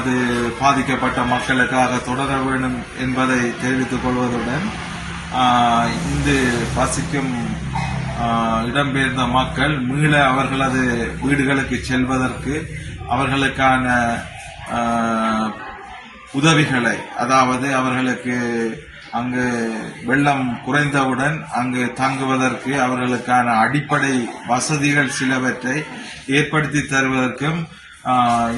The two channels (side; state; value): both; identical; correlation 1.00